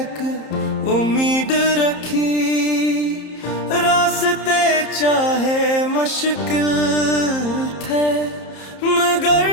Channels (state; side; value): late; right; 30 ms